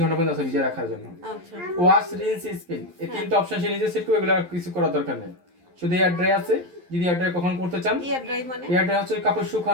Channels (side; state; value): left; late; 11 ms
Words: ঘন্টা পর্যন্ত আছে ভিজিয়ে রাখার জন্য। আচ্ছা। ওয়াশ, রিন্স, স্পিন, এই তিনটা অপশন সে নিজে সেট করবে, এগুলো আর কিছু করার দরকার নেই। শুধু এয়ার ড্রাই আছে, যদি এয়ার ড্রাই কখন করতে চান। এয়ার ড্রাই মানে? এয়ার ড্রাই হচ্ছে কাপড়